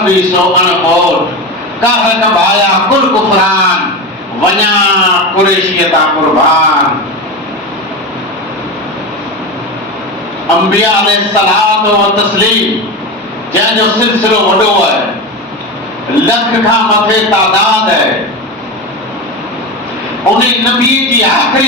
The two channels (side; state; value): both; normal; correlation 0.22